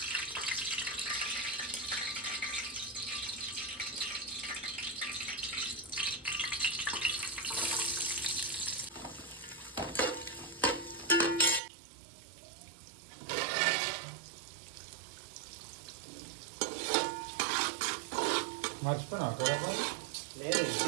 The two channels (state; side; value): drops out; left; at 11.6 s